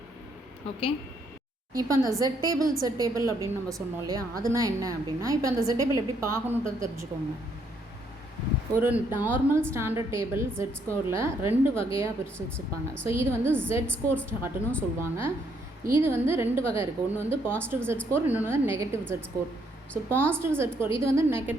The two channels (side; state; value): both; normal; correlation 0.71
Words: ஓகே, இப்போ அந்த Z டேபிள் அப்படின்னு நம்ம சொன்னோம் இல்லையா, அதுனா என்ன அப்படின்னா, இப்போ அந்த Z டேபிள் எப்படி பார்க்கணுன்றது தெரிஞ்சுக்கோங்க. ஒரு நார்மல் ஸ்டாண்டர்ட் டேபிள் Z ஸ்கோரில் 2 வகையாக பிரித்து வச்சுருப்பாங்க. ஸோ இது வந்து Z ஸ்கோர் ஸ்டார்ட்னு சொல்லுவாங்க. இது வந்து 2 வகை இருக்குது. ஒன்று வந்து பாசிட்டிவ் Z ஸ்கோர், இன்னொன்று வந்து negative Z score. So positive Z score இது வந்து